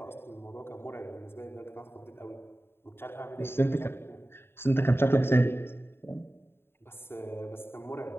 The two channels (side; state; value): right; late; 0.11 ms